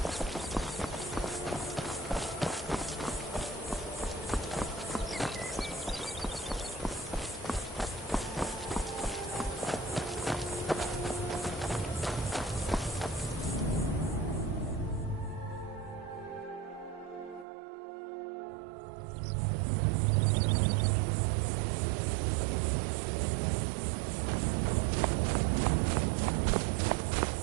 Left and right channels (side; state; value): left; drops out; at 17.4 s